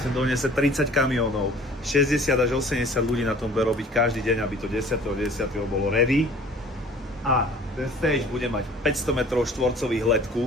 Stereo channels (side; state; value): both; normal; correlation 0.49